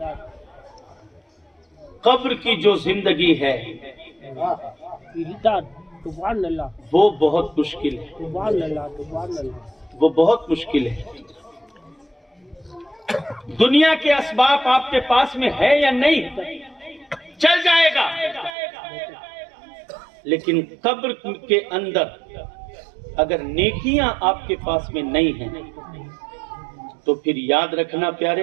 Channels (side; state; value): left; drops out; at 18.6 s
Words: قبر کی جو زندگی ہے وہ بہت مشکل ہے، وہ بہت مشکل ہے۔ دنیا کے اسباب آپ کے پاس میں ہے یا نہیں چل جائے گا، لیکن قبر کے اندر اگر نیکیاں آپ کے پاس میں نہیں ہیں تو پھر یاد رکھنا